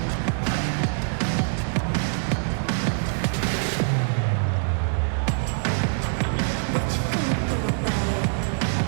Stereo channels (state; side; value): silent; left; 62 dB below the other